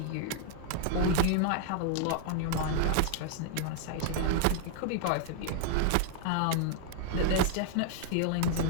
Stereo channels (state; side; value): different; both; correlation 0.00